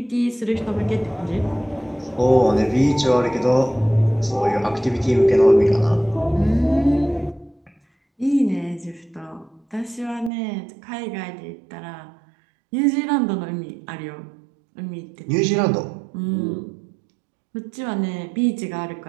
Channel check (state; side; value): drops out; left; at 10.3 s